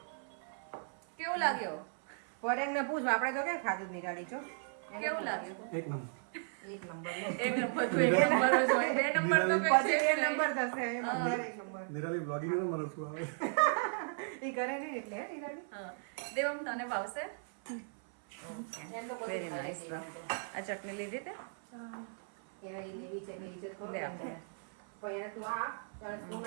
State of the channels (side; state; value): left; silent; 54 dB below the other